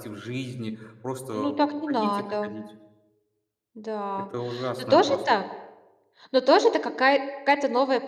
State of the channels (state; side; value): identical; both; correlation 1.00